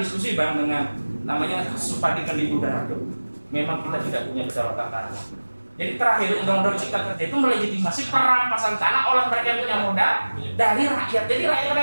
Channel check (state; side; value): inverted; both; correlation -1.00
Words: Bang dengan namanya Supadi Kendibu Darado. Memang kita tidak punya kedaulatan tanah. Jadi terakhir Undang-Undang Cipta Kerja itu melegitimasi perampasan tanah oleh mereka yang punya modal dari rakyat. Jadi